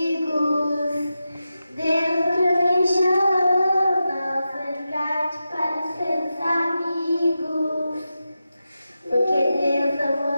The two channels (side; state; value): both; inverted; correlation -0.91